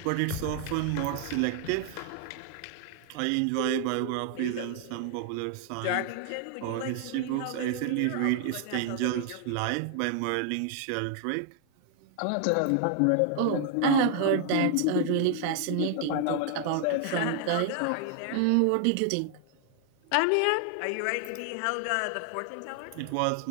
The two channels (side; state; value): both; different; correlation 0.00